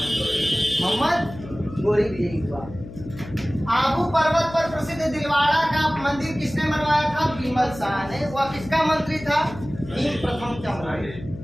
मोहम्मद गौरी विजयी हुआ। आबू पर्वत पर प्रसिद्ध दिलवाड़ा का मंदिर किसने बनवाया था? बीमल शाह ने। वह किसका मंत्री था? भीम प्रथम चंद्र।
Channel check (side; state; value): left; noise; hum, 14 dB below the sound